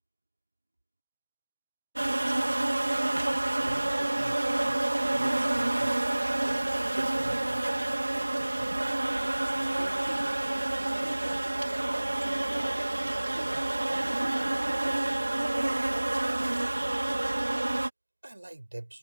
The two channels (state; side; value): inverted; both; correlation -1.00